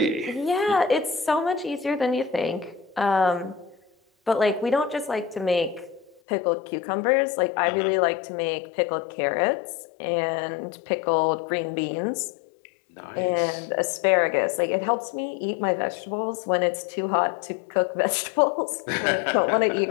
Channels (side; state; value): right; drops out; at 6.2 s